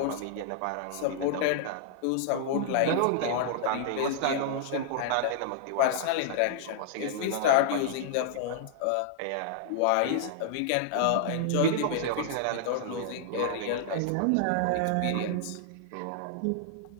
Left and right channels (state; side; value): different; both; correlation -0.01